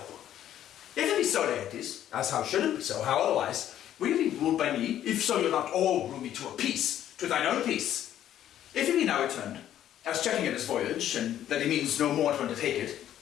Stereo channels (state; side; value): quieter; right; 11.4 dB